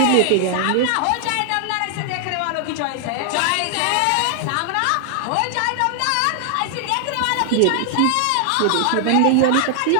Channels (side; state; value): both; different; correlation 0.00